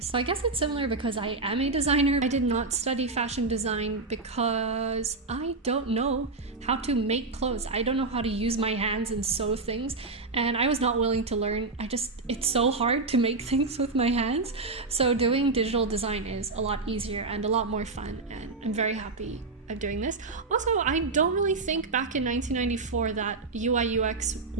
So I guess it's similar because I am a designer. I did not study fashion design because I don't know how to make clothes. I don't know how to use my hands and sew things, and I was not willing to learn. It's so hard to make things with my hands. So doing digital design is a lot easier and a lot more fun, and I'm very happy of doing this. Also, I don't really think back in 1994 that UI UX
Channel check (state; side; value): quieter; left; 3.7 dB